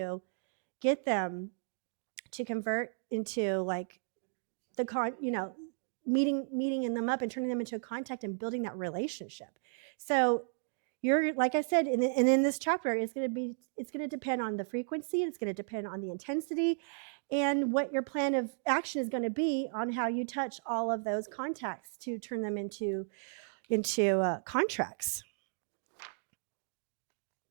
get them to convert into like meeting them up and turning them into a contact and building that relationship. So you're, like I said, and in this chapter, it's going to depend on the frequency. It's going to depend on the intensity. and what your plan of action is going to be on how you touch all of those contacts to turn them into contracts.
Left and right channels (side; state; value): left; silent; digital silence